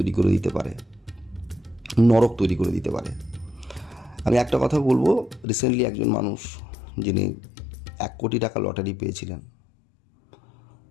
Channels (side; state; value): right; drops out; at 5.5 s